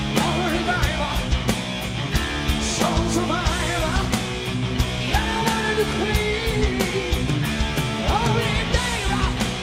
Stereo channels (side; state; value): both; identical; correlation 1.00